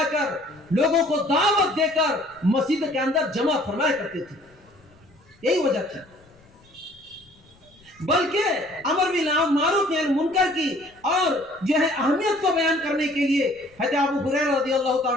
کر لوگوں کو دعوت دے کر مسجد کے اندر جمع فرمایا کرتے تھے، یہی وجہ تھی۔ بلکہ امر بالمعروف نہی عن المنکر کی اور جو ہے اہمیت کو بیان کرنے کے لیے حضرت ابو ہریرہ رضی اللہ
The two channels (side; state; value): left; noise; rumble, 30 dB below the sound